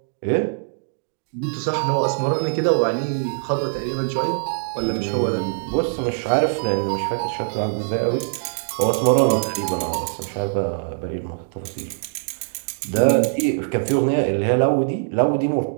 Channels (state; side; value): silent; left; digital silence